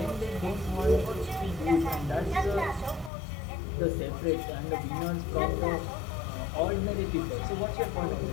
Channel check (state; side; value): drops out; right; at 3.1 s